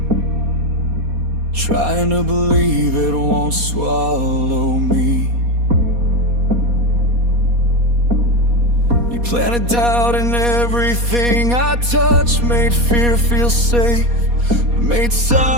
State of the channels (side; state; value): left; late; 4.2 ms